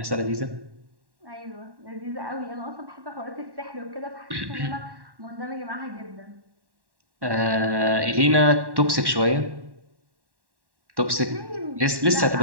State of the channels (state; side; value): late; left; 1.1 ms